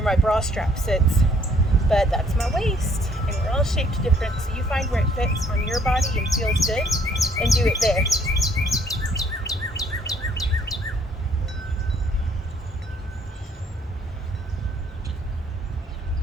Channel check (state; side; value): normal; both; correlation 0.63